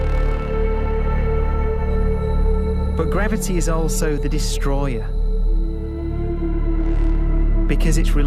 But gravity is also the destroyer, because it's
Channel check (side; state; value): both; identical; correlation 1.00